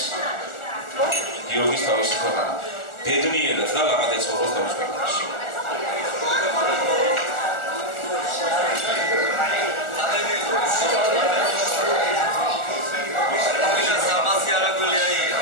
გიორგის თავისი ქვეყანა. ბედნიერად და ლაღად ეცხოვროს თავის ქვეყანაში.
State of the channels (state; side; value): late; right; 1.4 ms